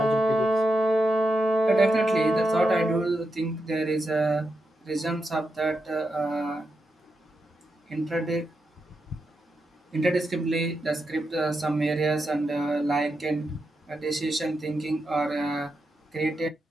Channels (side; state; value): both; normal; correlation 0.86